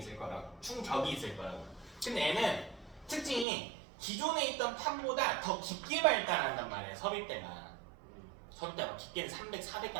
거라고. 충격이 있을 거라고. 근데 애는 특징이 기존에 있던 판보다 더 깊게 발달한단 말이야. 섭입대가 깊게는 300,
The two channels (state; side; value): drops out; left; at 3.5 s